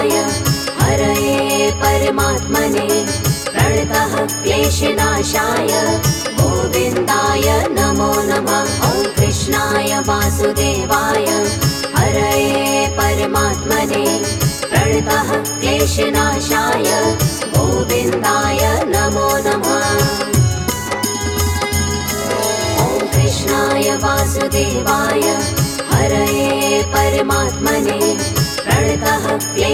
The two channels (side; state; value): both; identical; correlation 1.00